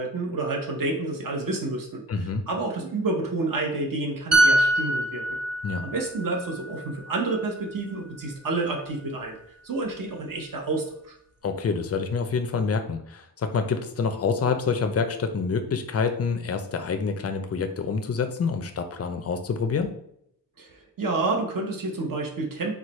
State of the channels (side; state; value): both; normal; correlation 0.35